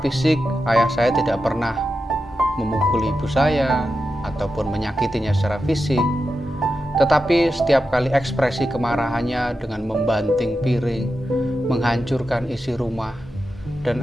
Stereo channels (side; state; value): both; normal; correlation 0.90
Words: fisik ayah saya tidak pernah memukul ibu saya ataupun menyakitinya secara fisik, tetapi setiap kali ekspresi kemarahannya dengan membanting piring, menghancurkan isi rumah, dan